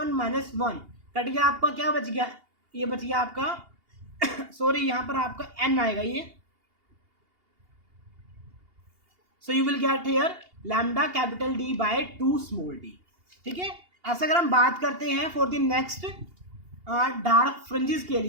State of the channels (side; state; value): left; late; 2.8 ms